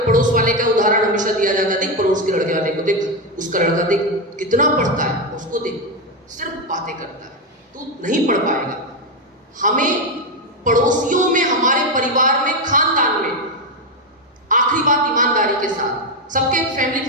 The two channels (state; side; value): normal; both; correlation 0.08